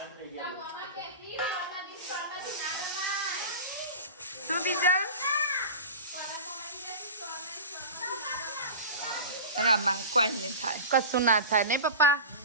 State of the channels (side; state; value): both; inverted; correlation -0.32